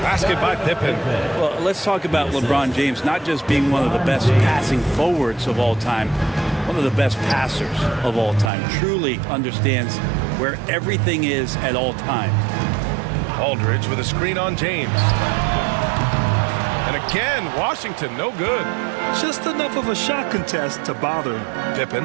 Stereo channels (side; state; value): left; drops out; at 8.5 s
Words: by Pippen. Well, let's talk about LeBron James not just being one of the best passing forwards of all time, one of the best passers of all time. Truly understands where everything is at all times. Aldridge with a screen on James. And again, Washington, no good. Just enough of a shot contest to bother him. Pippen.